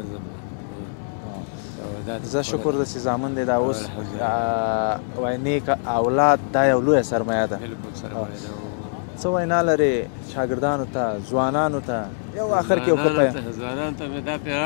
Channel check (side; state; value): right; silent; digital silence